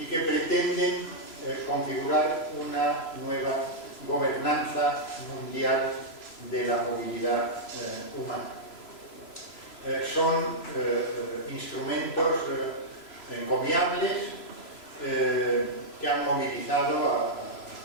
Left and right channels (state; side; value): late; right; 3.0 ms